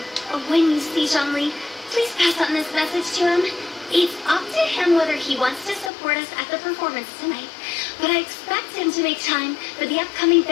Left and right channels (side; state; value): right; drops out; at 5.9 s